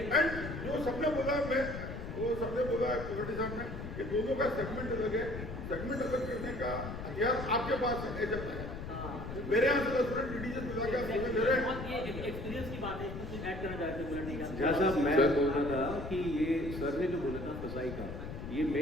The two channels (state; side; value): noise; left; rumble, 8 dB below the sound